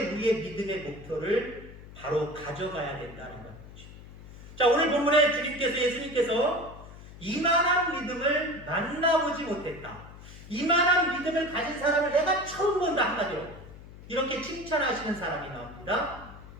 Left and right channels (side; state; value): left; noise; hum, 17 dB below the sound